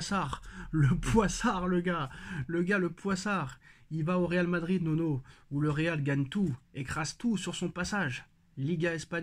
le poissard. Il va au Real Madrid Nono, où le Real gagne tout, écrase tout sur son passage. Liga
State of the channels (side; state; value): both; identical; correlation 1.00